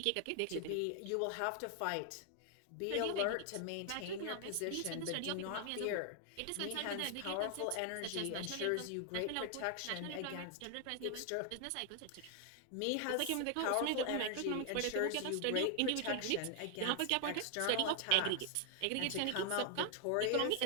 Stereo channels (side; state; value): both; different; correlation 0.00